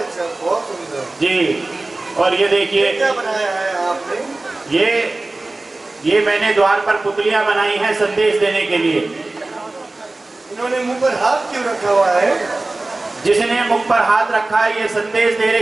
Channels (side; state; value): left; quieter; 3.0 dB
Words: बहुत सुंदर जी। और ये देखिए क्या बनाया है आपने? ये मैंने द्वार पर पुतलियां बनाई हैं संदेश देने के लिए। इन्होंने मुंह पर हाथ क्यों रखा हुआ है? जिसने मुख पर हाथ रखा है ये संदेश दे